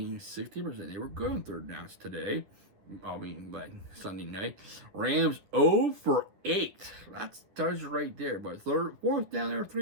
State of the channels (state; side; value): late; left; 10 ms